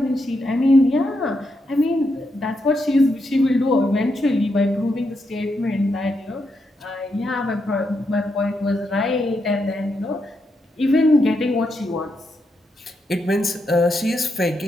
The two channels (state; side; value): normal; both; correlation 0.82